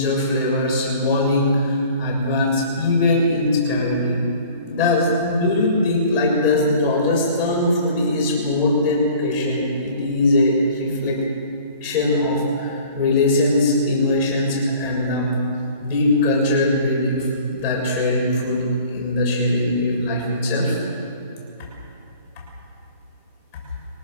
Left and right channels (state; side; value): inverted; both; correlation -0.49